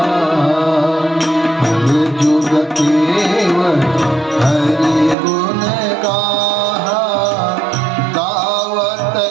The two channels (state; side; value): drops out; left; at 5.2 s